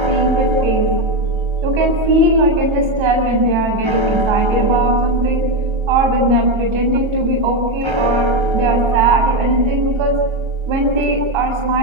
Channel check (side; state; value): left; late; 1.3 ms